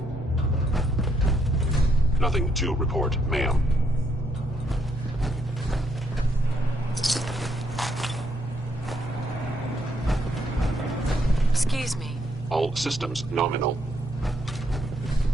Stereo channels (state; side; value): normal; both; correlation 0.74